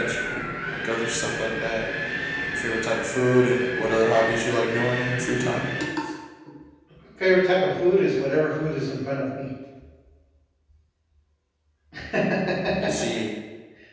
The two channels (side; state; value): both; identical; correlation 1.00